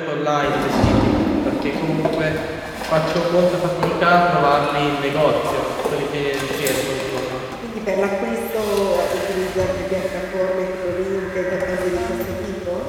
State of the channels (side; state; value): both; identical; correlation 1.00